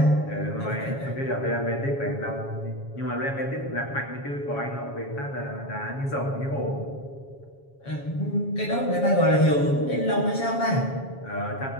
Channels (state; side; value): late; right; 7.2 ms